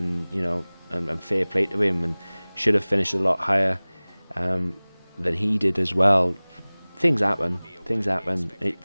you know, and fair play to him, and should have finished a lot higher than he did as well. Things happen.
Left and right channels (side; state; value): both; inverted; correlation -1.00